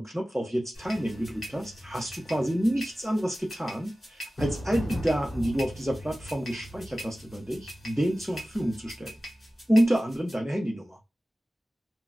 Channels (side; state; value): both; normal; correlation 0.96